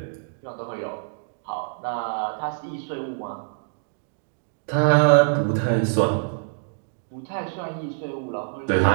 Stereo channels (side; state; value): left; silent; digital silence